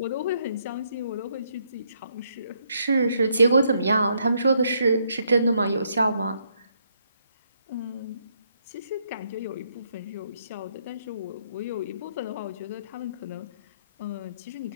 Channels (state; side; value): inverted; both; correlation -0.74